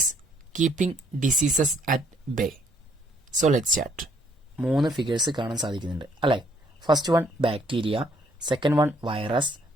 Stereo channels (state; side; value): normal; both; correlation 0.67